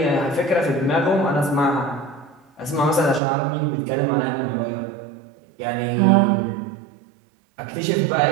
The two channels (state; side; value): drops out; left; at 3.2 s